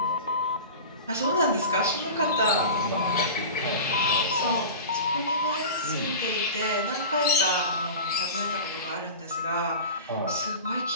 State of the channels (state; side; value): inverted; both; correlation -0.32